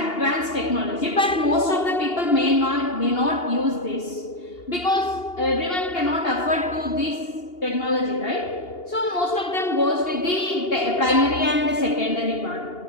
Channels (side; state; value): right; late; 2.8 ms